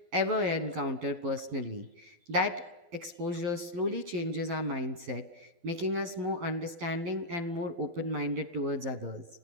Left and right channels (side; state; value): left; late; 12 ms